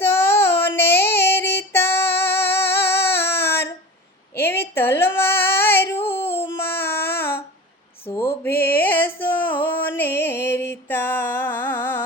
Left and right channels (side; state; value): both; normal; correlation 0.34